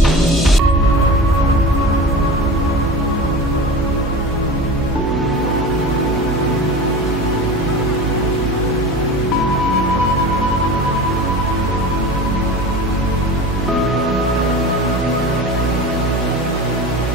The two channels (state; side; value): noise; right; hum, 5 dB below the sound